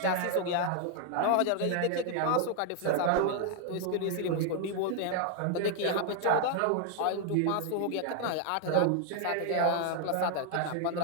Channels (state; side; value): different; both; correlation 0.00